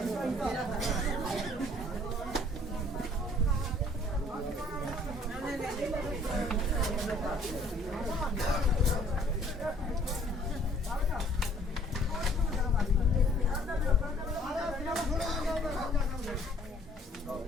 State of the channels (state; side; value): normal; both; correlation 0.58